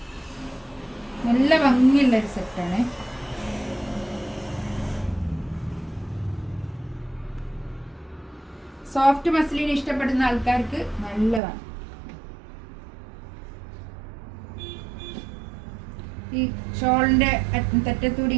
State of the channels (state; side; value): drops out; left; at 11.4 s